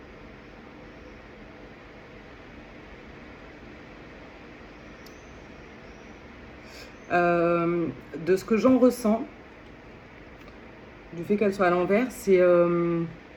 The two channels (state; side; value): identical; both; correlation 1.00